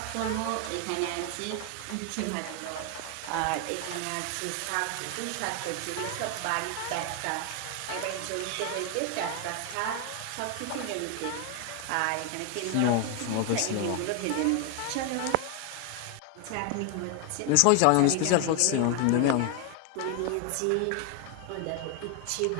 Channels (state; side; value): different; both; correlation 0.01